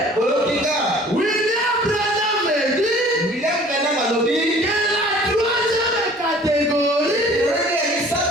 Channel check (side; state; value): both; normal; correlation 0.50